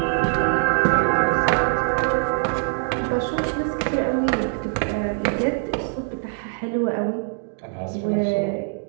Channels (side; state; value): left; silent; 63 dB below the other